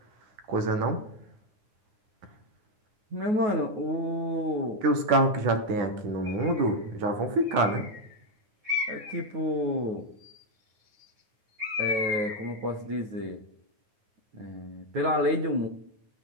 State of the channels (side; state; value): left; late; 9.5 ms